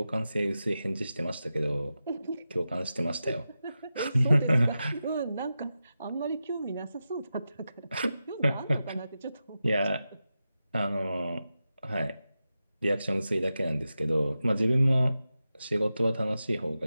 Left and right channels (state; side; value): inverted; both; correlation -0.91